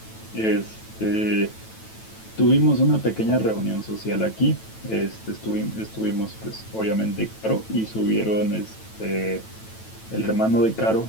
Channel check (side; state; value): right; late; 9.1 ms